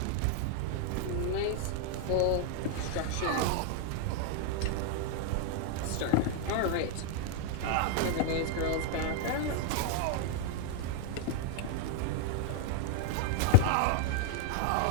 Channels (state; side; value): different; both; correlation -0.01